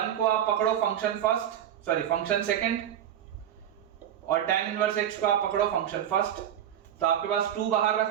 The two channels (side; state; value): left; quieter; 10.4 dB